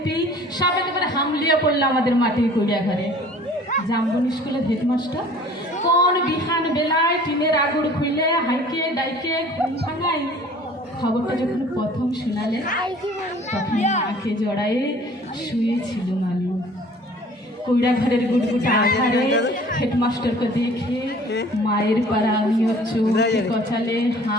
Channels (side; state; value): both; normal; correlation 0.49